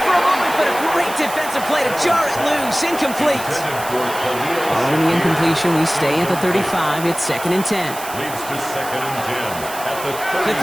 for a moment, but a great defensive play to jar it loose. Incomplete. Following the incompletion, we stay at the 35. It's second and 10. Leads to second and 10 at the 30. The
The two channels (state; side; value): noise; right; hiss, 12 dB below the sound